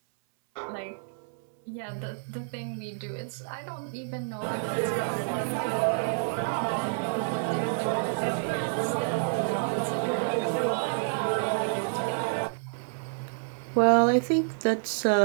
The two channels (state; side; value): silent; left; 59 dB below the other